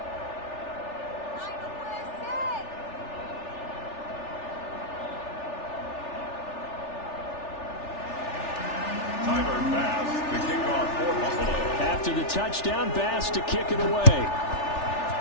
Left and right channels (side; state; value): right; late; 3.4 ms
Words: After the touchdown, Bass to kick it away.